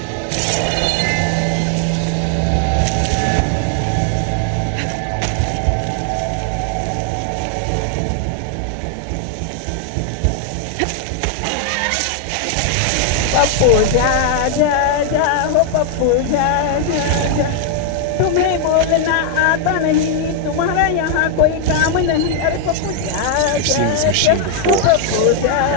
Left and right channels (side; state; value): both; different; correlation 0.00